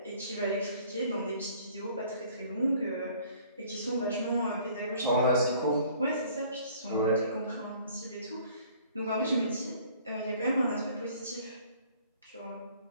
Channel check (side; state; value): both; inverted; correlation -0.55